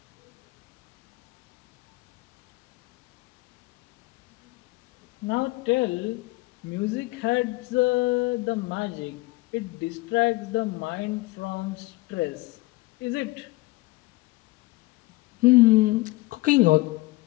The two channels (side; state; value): right; quieter; 21.2 dB